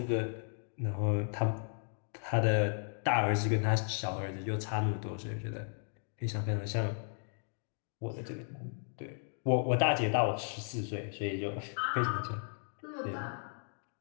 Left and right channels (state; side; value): silent; right; 54 dB below the other